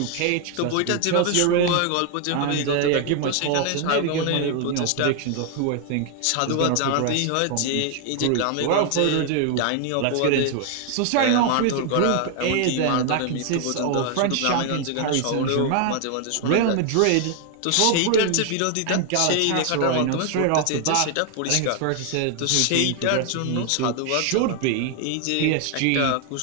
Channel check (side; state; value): both; different; correlation 0.00